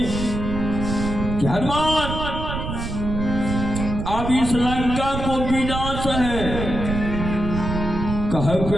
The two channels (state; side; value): noise; right; rumble, 5 dB below the sound